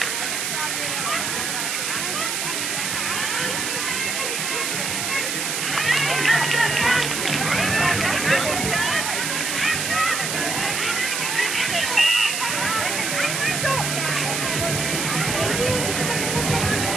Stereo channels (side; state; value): right; noise; hiss, 1 dB below the sound